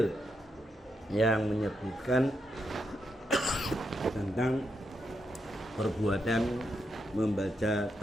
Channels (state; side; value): normal; both; correlation 0.82